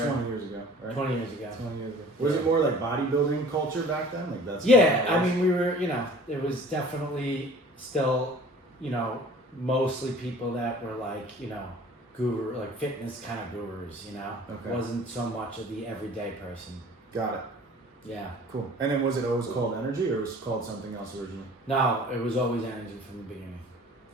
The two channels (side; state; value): both; normal; correlation 0.47